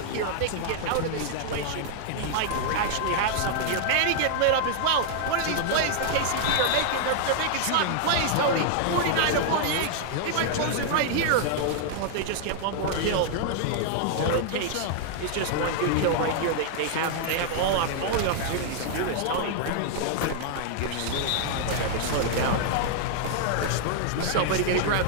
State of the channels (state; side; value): different; both; correlation -0.01